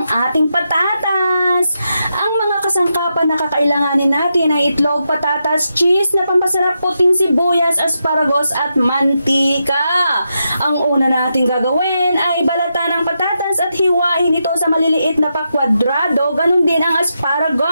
ating patatas. Ang mga kasangkapan na kakailanganin natin ay itlog, patatas, cheese na pampasarap, puting sibuyas, asparagus at mantika. Ang una natin gagawin ay balatan ng patatas at hiwain ito sa maliliit na pakwadrado. Ganun din ang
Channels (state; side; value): inverted; both; correlation -0.85